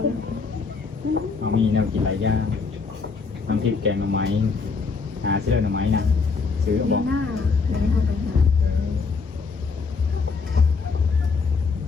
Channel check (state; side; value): quieter; right; 4.8 dB